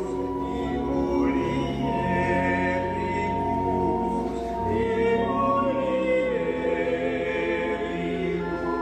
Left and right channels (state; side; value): identical; both; correlation 1.00